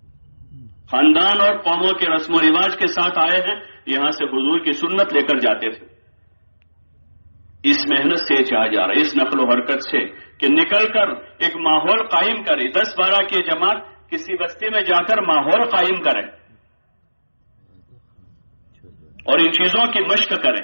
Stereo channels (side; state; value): both; inverted; correlation -1.00